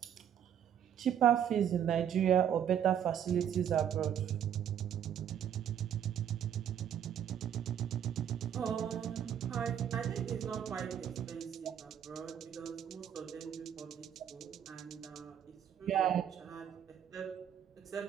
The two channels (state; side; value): quieter; left; 9.3 dB